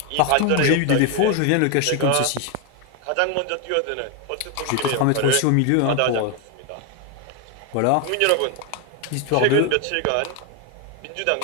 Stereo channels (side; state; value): both; different; correlation 0.01